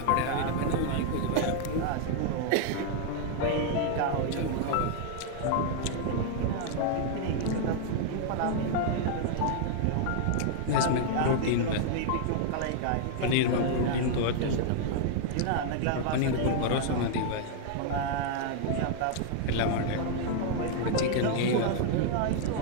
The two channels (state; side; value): different; both; correlation -0.01